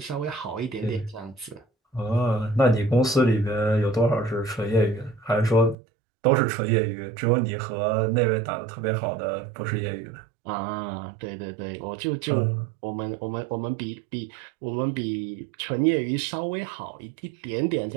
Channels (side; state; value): left; drops out; at 5.8 s